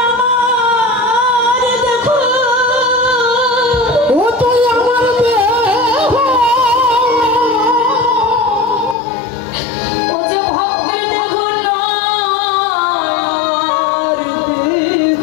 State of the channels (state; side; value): drops out; right; at 9.0 s